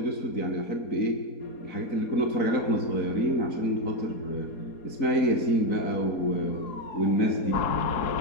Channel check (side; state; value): right; late; 4.0 ms